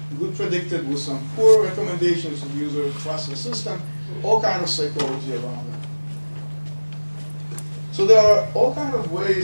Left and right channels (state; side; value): inverted; both; correlation -1.00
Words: predicted with some poor recommendations so the user trusts the system? All kind of psychology around that. So there are all kinds of